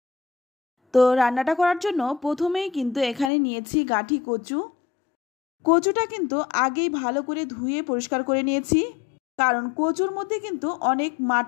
তো রান্নাটা করার জন্য প্রথমেই কিন্তু এখানে নিয়েছি গাঠি কচু। কচুটা কিন্তু আগেই ভালো করে ধুয়ে পরিষ্কার করে নিয়েছি, কারণ কচুর মধ্যে কিন্তু অনেক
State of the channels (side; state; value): right; drops out; at 3.3 s